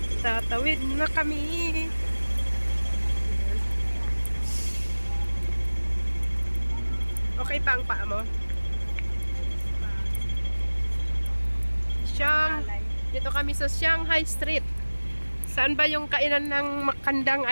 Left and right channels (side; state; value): both; inverted; correlation -1.00